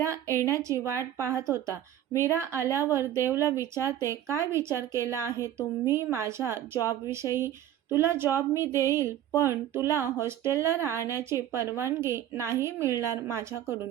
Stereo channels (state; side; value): quieter; left; 11.6 dB